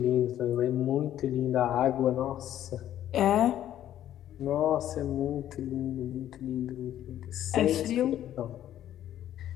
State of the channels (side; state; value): right; quieter; 11.7 dB